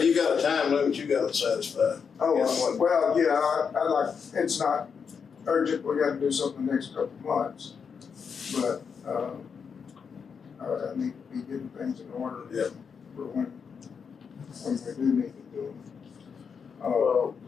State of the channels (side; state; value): right; quieter; 6.3 dB